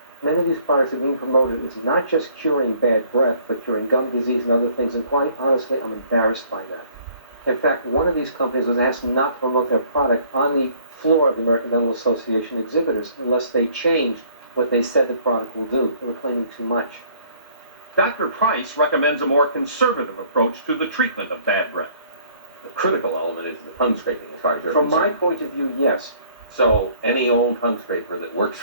Many of these products are being promoted as not just curing bad breath, but curing gum disease and other things, and quite honestly, I'm embarrassed by that. In fact, one of these companies was asked not to promote their product on the floor of the American Dental Association exhibitors unless they changed what they said the product will do. They were claiming too much. Dr. Price recommends a more conservative approach to the treatment of bad breath. The critical element is the tongue scraping, as far as you're From my concerned. point of view, yes. So any old tongue scraper that works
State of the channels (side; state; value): both; inverted; correlation -0.58